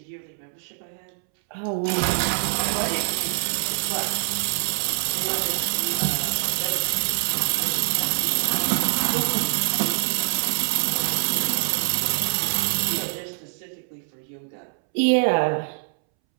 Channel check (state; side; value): silent; left; 62 dB below the other